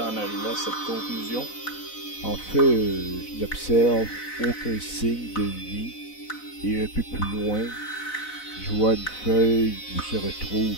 arriver à cette conclusion? En fait, je n'observe aucun signe de vie et un peu plus loin, je vois une feuille où se retrouve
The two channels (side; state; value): right; late; 4.0 ms